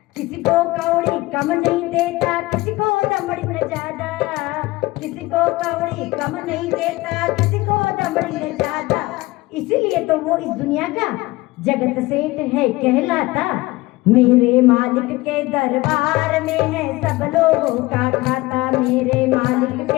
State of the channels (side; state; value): right; quieter; 20.3 dB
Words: किसी को कौड़ी कम नहीं देता, किसी को दमड़ी न ज्यादा, किसी को कौड़ी कम नहीं देता, किसी को दमड़ी न ज्यादा। इसीलिए तो वो इस दुनिया का जगत सेठ है कहलाता। मेरे मालिक के दरबार में है सब लोगों का खाता, मेरे मालिक